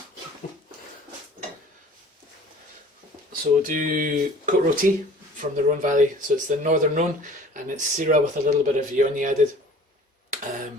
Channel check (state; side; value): normal; both; correlation 0.47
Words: So we'll do Côte Rôtie from the Rhone Valley. So it's the northern Rhone, and it's Syrah with a little bit of Viognier added.